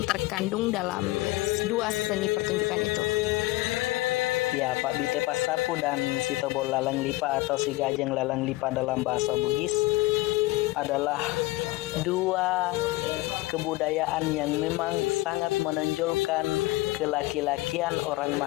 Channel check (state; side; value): quieter; right; 20.2 dB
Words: terkandung dalam dua seni pertunjukan itu? Ya, Pak Bite Pasapu dan si Tobok Laleng Lipa atau si Gajeng Laleng Lipa dalam bahasa Bugis adalah dua kebudayaan yang memang sangat menonjolkan kelaki-lakian orang